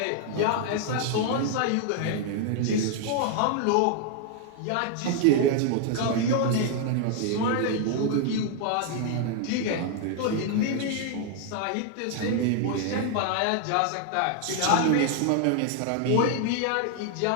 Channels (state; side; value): different; both; correlation 0.00